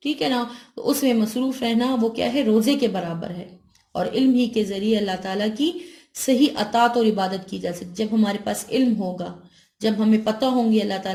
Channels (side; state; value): both; identical; correlation 1.00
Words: ٹھیک ہے نا، تو اس میں مصروف رہنا وہ کیا ہے، روزے کے برابر ہے۔ اور علم ہی کے ذریعے اللہ تعالیٰ کی صحیح اطاعت اور عبادت کی جا سکتی۔ جب ہمارے پاس علم ہوگا، جب ہمیں پتہ ہوں گے اللہ